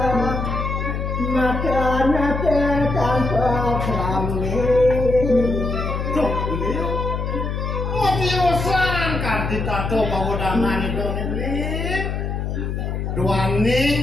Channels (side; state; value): left; noise; hum, 3 dB below the sound